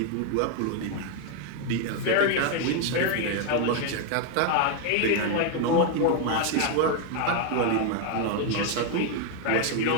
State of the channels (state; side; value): different; both; correlation 0.01